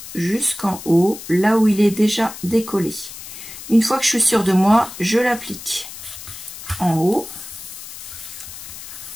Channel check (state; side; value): noise; left; hiss, 12 dB below the sound